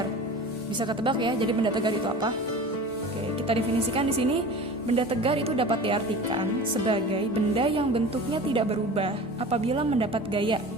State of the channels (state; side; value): normal; both; correlation 0.37